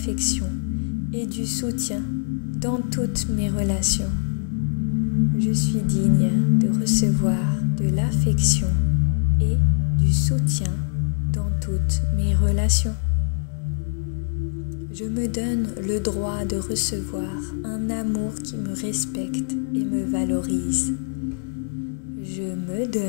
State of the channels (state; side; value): silent; right; digital silence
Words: et du soutien dans toutes mes relations. Je suis digne de recevoir de l'affection et du soutien dans toutes mes relations. Je me donne le droit de recevoir un amour qui me respecte et me valorise. Je me